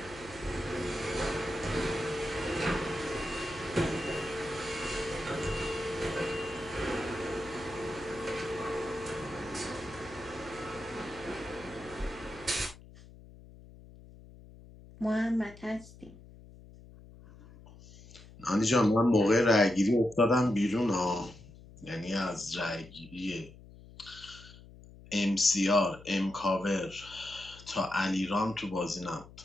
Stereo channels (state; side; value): noise; left; hum, 19 dB below the sound